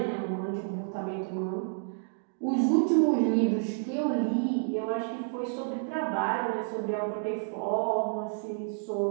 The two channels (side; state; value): left; silent; digital silence